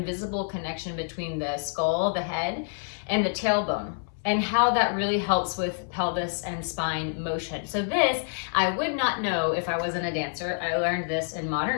connection between the skull, the head, and the tailbone, and how that really helps with pelvis and spine motion. So this, I would not know if I wasn't a dancer. I learned this in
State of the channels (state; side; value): silent; right; 60 dB below the other